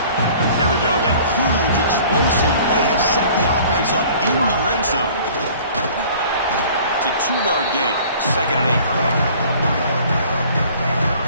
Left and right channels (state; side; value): inverted; both; correlation -0.50